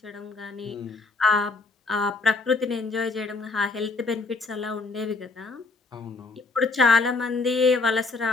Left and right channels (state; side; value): quieter; right; 3.9 dB